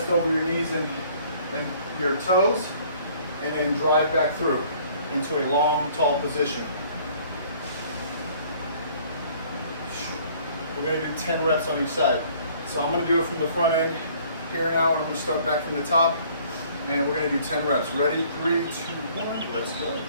over your knees and your toes, and then drive back through into a long, tall position. We're going to do 10 reps on each side. So I'm going to do it from the front end here now, and I'm going to start back from the top, and we're going to do 10 reps. Ready? 3, 2, 1, let's go.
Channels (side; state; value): both; inverted; correlation -0.57